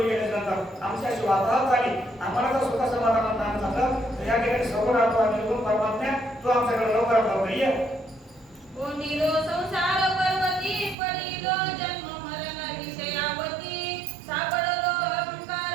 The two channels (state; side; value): drops out; left; at 11.0 s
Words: गेल्यानंतर आमच्याशी वातावरण झाली आम्हाला जर सुख समाधान नाम झालं तर या ठिकाणी सगुण राहतो आणि निर्गुण परमात्म्या तू आमच्याकडे लवकर ये. कोणीलो संसार पर्वती पडिलो जन्म मरण विषयावती सापडलो अहंकार